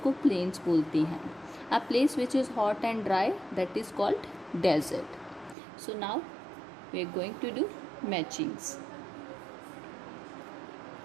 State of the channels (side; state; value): left; drops out; at 5.6 s